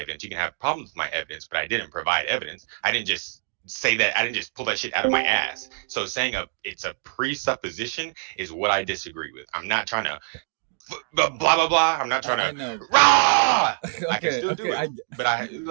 You can have problems with my evidence, but I didn't provide evidence. I didn't just say that. I didn't just pull that shit out of my ass. So saying it's a presupposition is what I disagree with. I'm not trying to blah blah blah. I'm not trying I to know. rah. I can Okay. still do Okay. it, but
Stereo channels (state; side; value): silent; left; digital silence